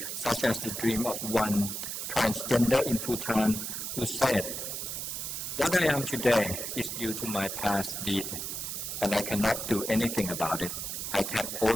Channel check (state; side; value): noise; right; hiss, 4 dB below the sound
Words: such as the dream of one transgender in Bhutan who said, "What I am today is due to my past deed, and I cannot do anything about it. I can